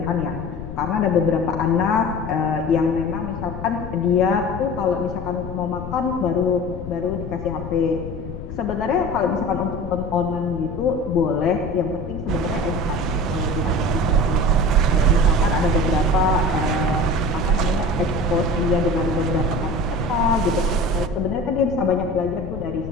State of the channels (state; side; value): noise; left; rumble, 9 dB below the sound